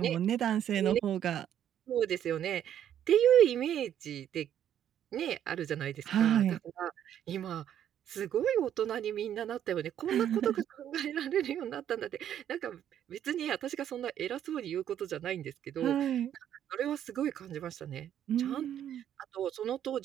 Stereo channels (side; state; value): left; quieter; 10.3 dB